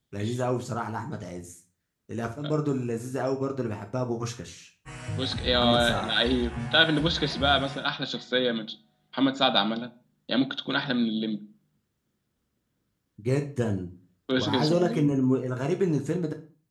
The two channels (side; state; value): both; identical; correlation 1.00